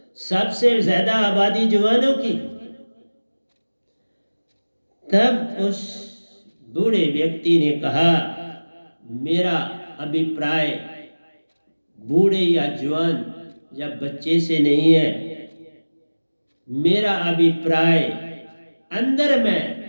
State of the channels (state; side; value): inverted; both; correlation -1.00